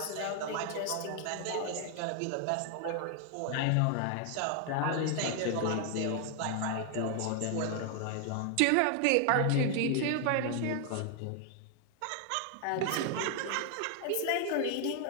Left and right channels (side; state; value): both; different; correlation 0.00